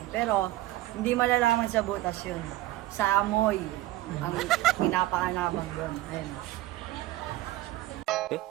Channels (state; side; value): quieter; left; 16.6 dB